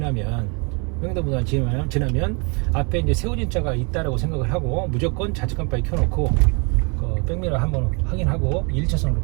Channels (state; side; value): quieter; left; 33.3 dB